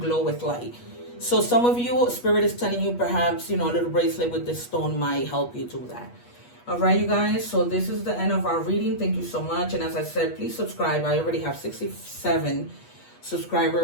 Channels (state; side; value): late; right; 8.3 ms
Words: glow with light. So some of you, Spirit is telling you perhaps, you know, a little bracelet with this stone might help you do that. All right, you guys, so this is the end of our reading. Thank you so much. And as I said, please subscribe. I already have 67